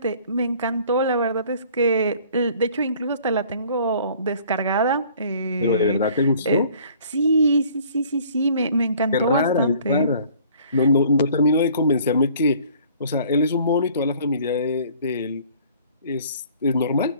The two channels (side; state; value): both; inverted; correlation -0.54